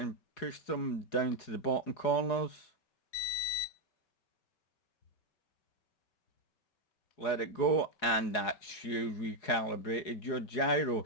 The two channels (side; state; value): right; late; 4.8 ms